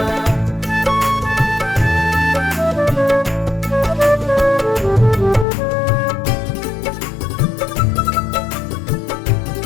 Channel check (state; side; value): drops out; right; at 5.5 s